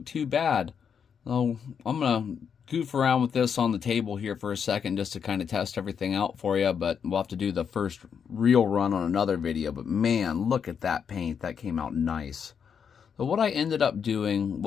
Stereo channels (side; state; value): right; quieter; 7.1 dB